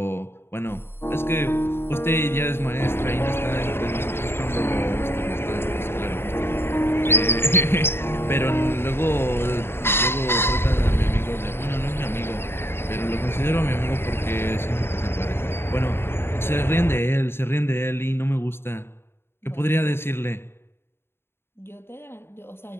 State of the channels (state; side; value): late; right; 0.11 ms